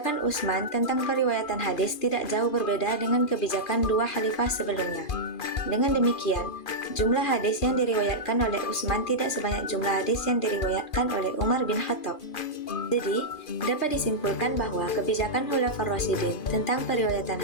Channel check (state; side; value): late; right; 2.4 ms